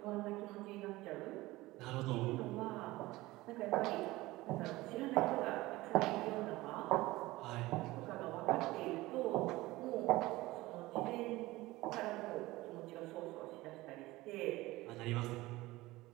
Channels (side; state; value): left; quieter; 19.0 dB